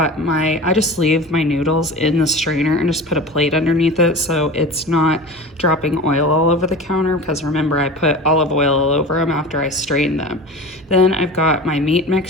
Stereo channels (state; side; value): normal; both; correlation 0.34